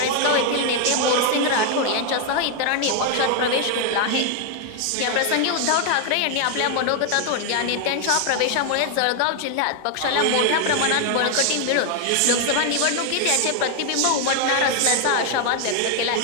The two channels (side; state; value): both; different; correlation 0.00